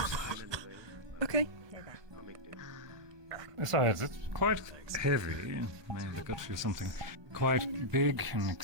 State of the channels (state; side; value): late; left; 1.2 ms